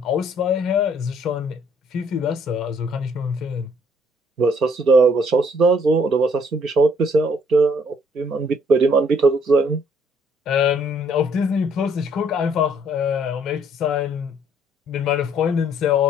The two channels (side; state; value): both; normal; correlation 0.64